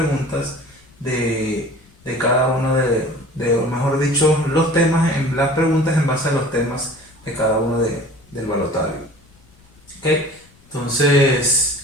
de cada uno o mejor dicho, los temas, las preguntas en base a los temas de cada uno del balotario. ¿Ok?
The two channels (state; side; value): noise; left; rumble, 29 dB below the sound